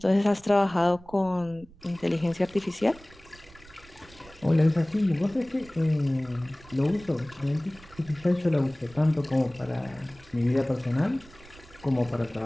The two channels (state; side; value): noise; right; rumble, 23 dB below the sound